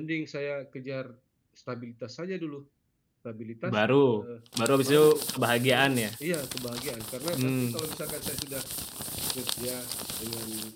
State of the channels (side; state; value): both; identical; correlation 1.00